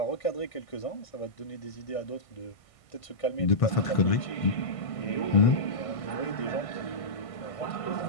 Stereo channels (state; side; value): late; right; 1.6 ms